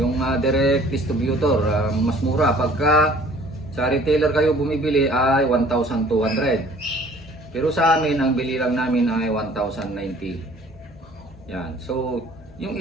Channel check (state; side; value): normal; both; correlation 0.53